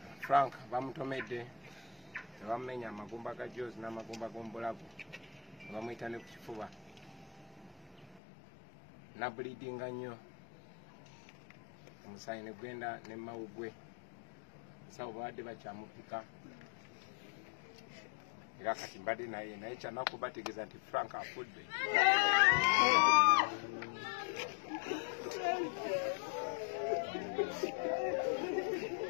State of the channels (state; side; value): drops out; right; at 8.2 s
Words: Frank bamutomedde ne bamumenya amagumba ga jozi n'amagumba g'omubulago ne bamuyita ne ku kifuba nabulidinga nnyo omusaayi ne gwenda ne mawugwe sawo bawadde bakyamupika era kati mbadde naye kyanaku bategeeza nti Frank afudde.